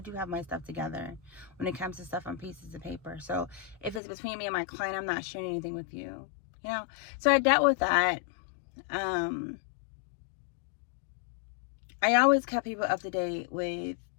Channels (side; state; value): right; drops out; at 4.0 s